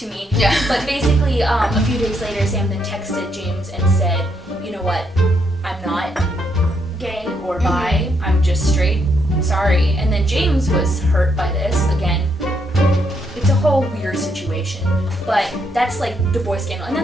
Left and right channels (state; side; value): normal; both; correlation 0.76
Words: me. But basically, a few days later, Sam then texted James and said, "You know what? I'm not gay or bi. I'm just straight. Sorry." And then James was hurt by this. Again, it's a whole weird situation. But that's like the boy scandal. And